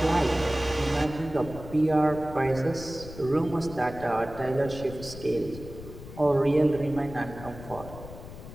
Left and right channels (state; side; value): noise; left; rumble, 14 dB below the sound